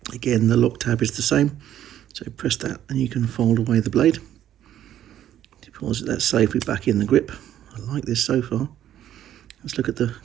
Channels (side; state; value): left; quieter; 11.4 dB